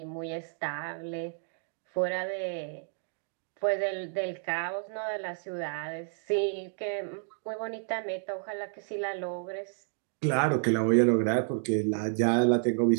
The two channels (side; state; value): left; silent; digital silence